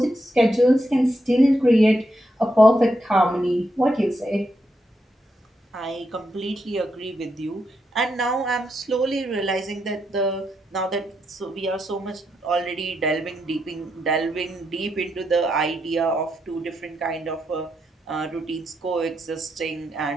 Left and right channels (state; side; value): normal; both; correlation 0.82